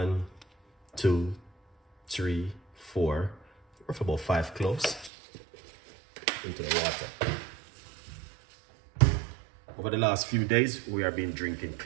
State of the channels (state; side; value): drops out; left; at 5.1 s